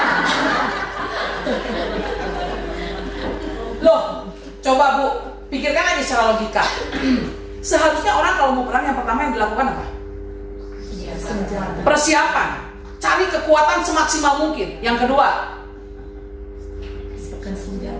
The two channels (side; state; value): both; identical; correlation 1.00